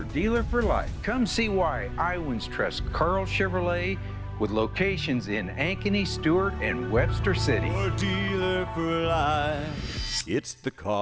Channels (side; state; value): both; identical; correlation 1.00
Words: dealer for life. Come see why Iowans trust Carl Chevrolet, with locations in Ankeny, Stewart, and Webster City. Your dealer for life, it's the